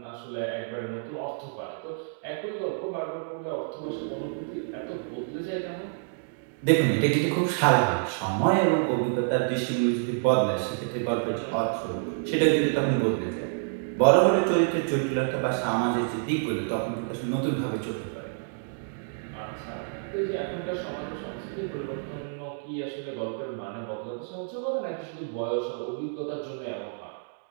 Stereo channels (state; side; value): silent; left; digital silence